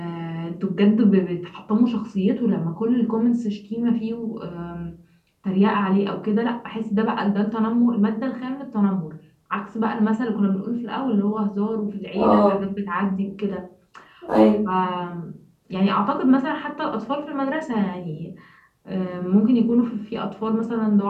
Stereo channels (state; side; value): identical; both; correlation 1.00